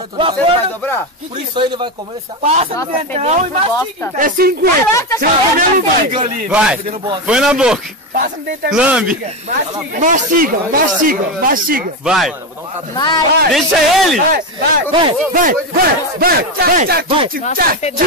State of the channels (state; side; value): normal; both; correlation 0.13